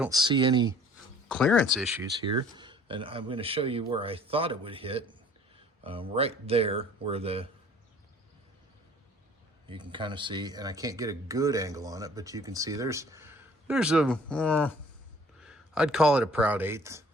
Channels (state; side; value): normal; both; correlation 0.53